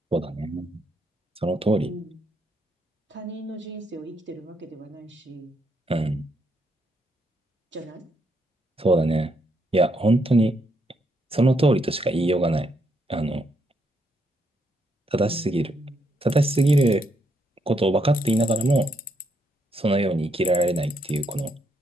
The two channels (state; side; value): normal; both; correlation 0.76